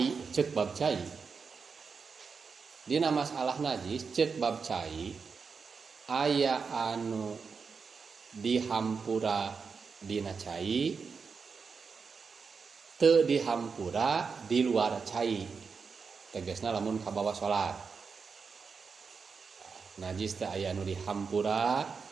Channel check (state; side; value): quieter; left; 5.3 dB